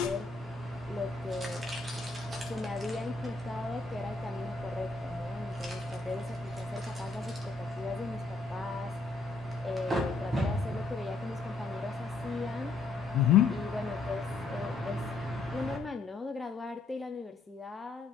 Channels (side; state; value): right; quieter; 3.6 dB